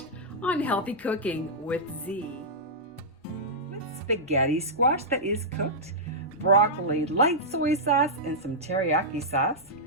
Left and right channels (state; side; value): normal; both; correlation -0.11